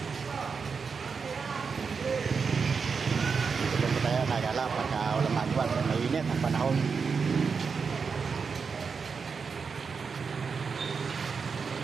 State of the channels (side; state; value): left; quieter; 5.5 dB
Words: Tayo nagala pagka walang magawa, mainit ang panahon.